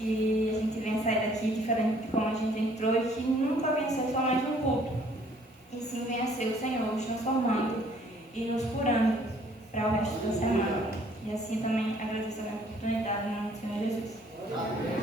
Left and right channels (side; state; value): both; normal; correlation 0.60